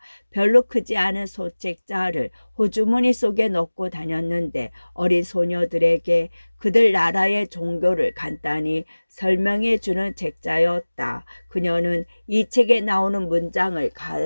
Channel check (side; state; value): both; inverted; correlation -1.00